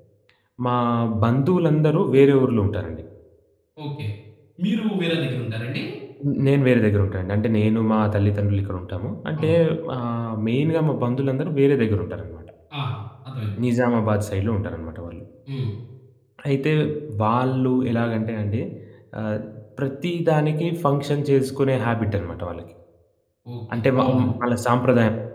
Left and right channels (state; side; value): identical; both; correlation 1.00